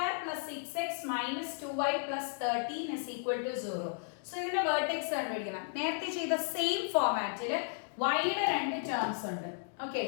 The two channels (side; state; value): right; silent; digital silence